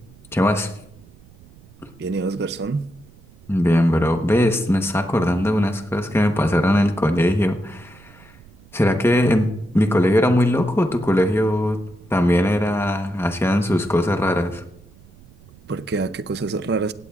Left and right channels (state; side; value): noise; right; rumble, 25 dB below the sound